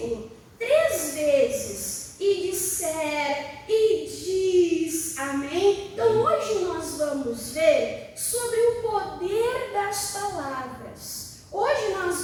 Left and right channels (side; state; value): both; identical; correlation 1.00